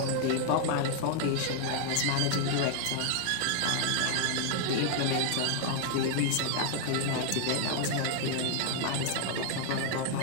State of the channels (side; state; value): both; different; correlation 0.00